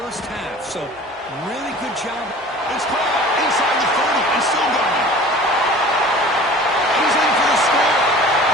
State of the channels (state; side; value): normal; both; correlation 0.43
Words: half, so really good job. It's caught inside the 30 and still going. He's in for the score.